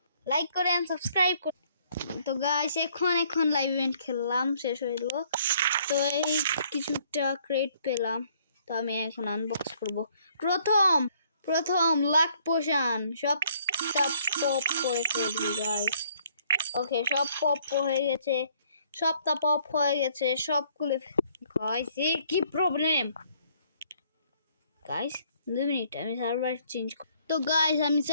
লাইক করেন, সাবস্ক্রাইব করেন। তো গাইস এখন লাইভ ইভেন্ট খেললাম, শেষ হয়ে গেল। তো এই কিছুটা ক্রেট পেলাম, তো আমি এখন আনবক্স করব। প্রথম লাক পোশন সবটা পপ করে ফেলবি গাইস। ওকে, সব পপ হয়ে গেছে, সবটা পপ হয়ে গেছে, সব খুলে গাইস। কি প্রবলেম গাইস? 2 মিনিট, আমি সার্ভার চেঞ্জ। তো গাইস আমি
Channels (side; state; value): both; inverted; correlation -0.64